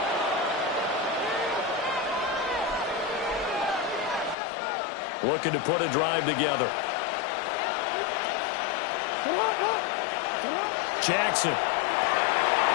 Looking to put a drive together. Jackson.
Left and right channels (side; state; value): right; drops out; at 4.4 s